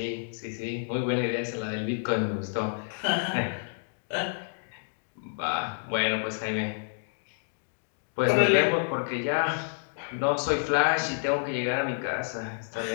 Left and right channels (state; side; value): silent; right; digital silence